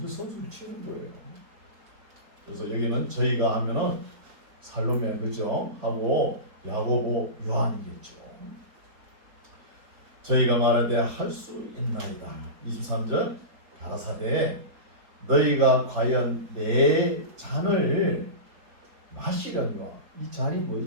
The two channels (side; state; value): left; late; 4.2 ms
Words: 선수를 치는 거예요. 그래서 여기는 저희가 하면은 살로메 그죠? 하고 야고보 요한이겠죠. 저희가 말하되 할 수 있나이다. 23절 가라사대 너희가 과연 내 잔을 마시려니와 이 잔이